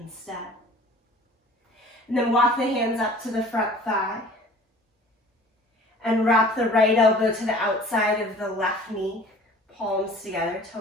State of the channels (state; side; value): normal; both; correlation 0.47